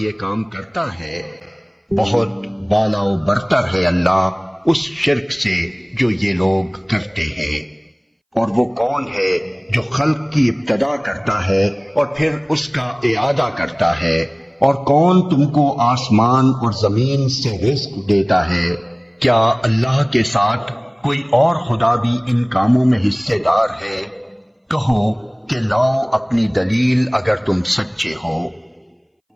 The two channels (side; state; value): both; identical; correlation 1.00